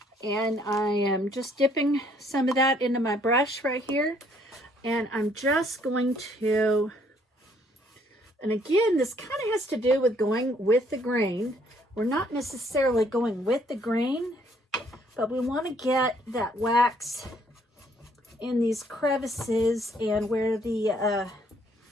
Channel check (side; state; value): both; normal; correlation 0.65